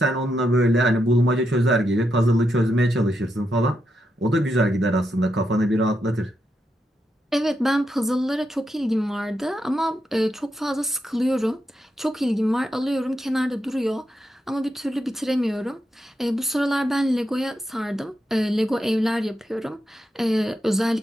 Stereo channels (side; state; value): both; normal; correlation 0.83